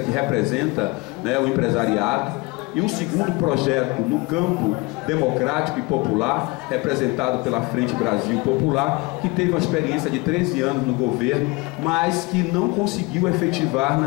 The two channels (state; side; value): quieter; right; 25.4 dB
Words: que representa, né, o empresariado. E um segundo projeto no campo democrático e popular, representado pela Frente Brasil Popular, que teve uma experiência de 13 anos no governo, mas que não conseguiu efetivar,